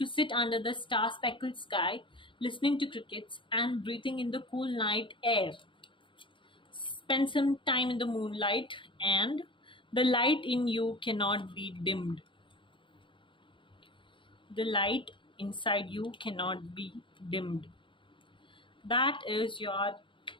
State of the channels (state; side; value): late; right; 0.24 ms